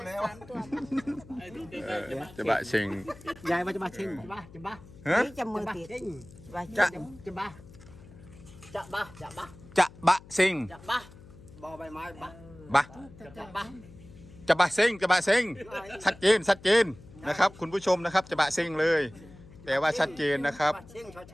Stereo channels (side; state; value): left; noise; hum, 20 dB below the sound